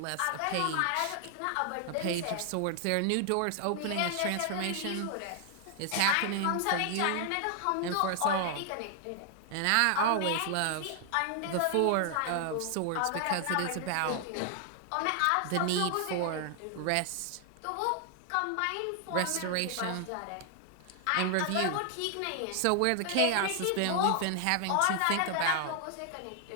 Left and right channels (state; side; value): different; both; correlation 0.00